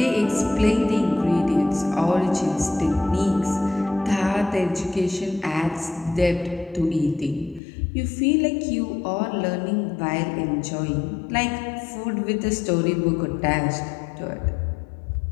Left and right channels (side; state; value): right; drops out; at 7.6 s